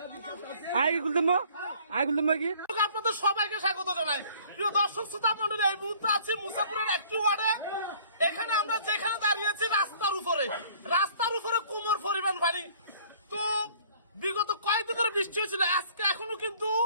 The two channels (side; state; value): both; inverted; correlation -0.54